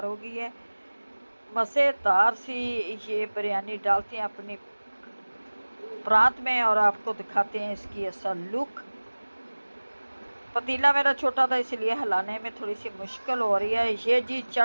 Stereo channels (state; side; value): inverted; both; correlation -1.00